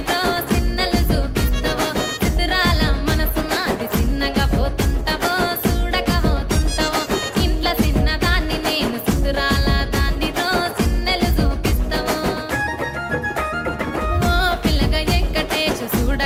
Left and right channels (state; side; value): identical; both; correlation 1.00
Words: చిన్నలు చూపిస్తావో చిత్రాల మనసు నాది చిన్నగా పోతుంటావో చూడకపోతుంటావో ఇంట్లో చిన్నదాన్ని నేను చిత్రాల దాన్నితో చిన్నలు చూపిస్తావో ఓ పిల్లగా వెంకటేశు